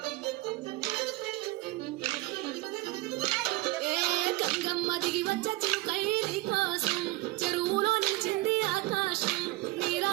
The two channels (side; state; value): left; quieter; 19.5 dB